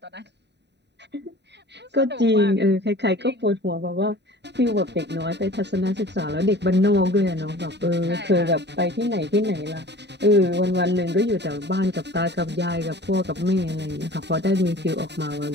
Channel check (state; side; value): late; left; 0.50 ms